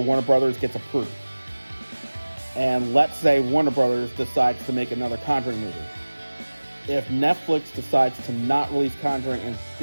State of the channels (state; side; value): inverted; both; correlation -1.00